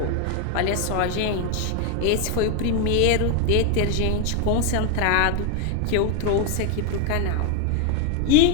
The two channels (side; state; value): both; different; correlation 0.01